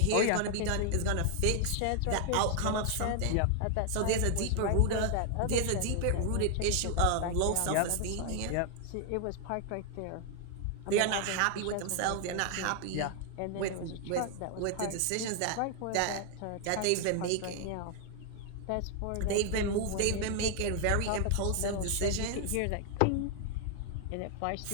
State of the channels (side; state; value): both; different; correlation 0.00